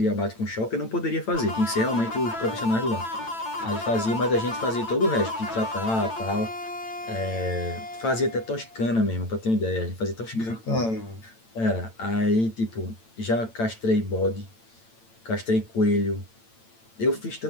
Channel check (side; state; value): right; late; 8.9 ms